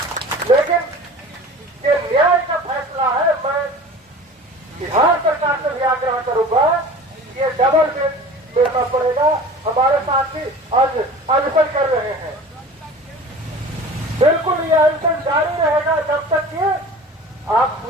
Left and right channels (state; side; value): normal; both; correlation 0.40